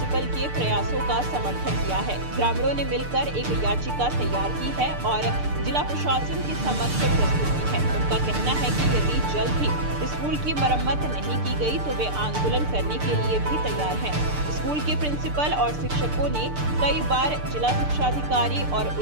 के प्रयासों का समर्थन किया है। ग्रामीणों ने मिलकर एक याचिका तैयार की है और जिला प्रशासन के समक्ष प्रस्तुत की है। उनका कहना है कि यदि जल्द ही स्कूल की मरम्मत नहीं की गई तो वे आंदोलन करने के लिए भी तैयार हैं। स्कूल के प्रिंसिपल और शिक्षकों ने कई बार जिला शिक्षा अधिकारी और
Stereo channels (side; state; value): left; late; 6.7 ms